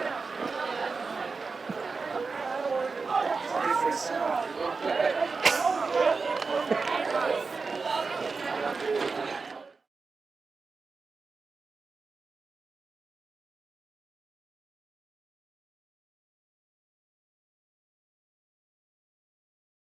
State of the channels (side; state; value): left; quieter; 4.5 dB